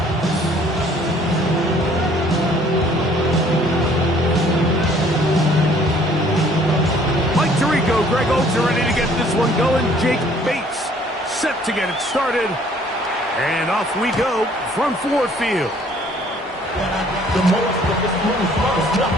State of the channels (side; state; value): both; normal; correlation 0.58